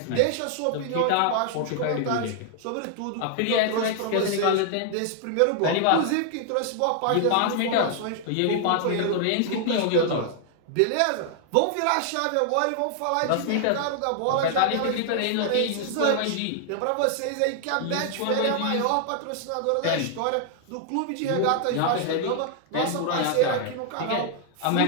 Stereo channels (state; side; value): different; both; correlation 0.00